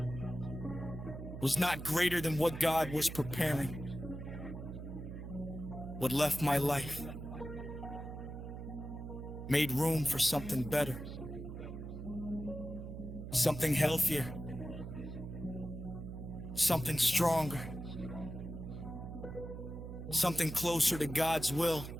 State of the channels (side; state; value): right; noise; hum, 9 dB below the sound